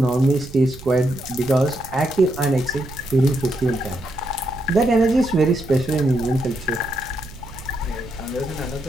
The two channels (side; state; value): right; noise; rumble, 17 dB below the sound